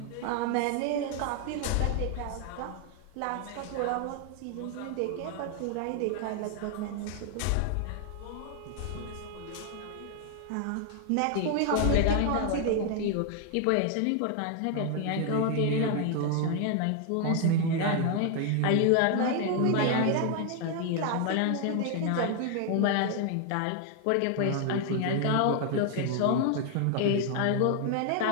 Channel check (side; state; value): both; different; correlation 0.00